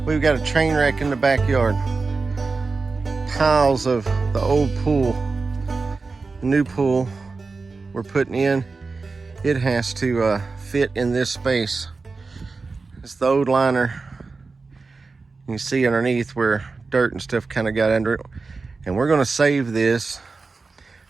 we've got a train wreck in the backyard. Tiles of the old pool, the new pool we're putting in, it has to fit in this space. It's the old liner. You can see underneath where dirt and stuff kind of got under it. And we're gonna save this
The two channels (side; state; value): left; quieter; 4.1 dB